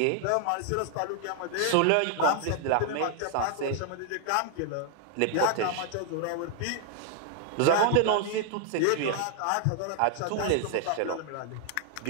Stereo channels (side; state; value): both; different; correlation 0.00